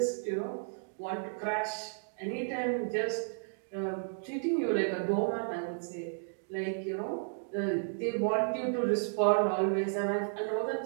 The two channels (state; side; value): silent; left; digital silence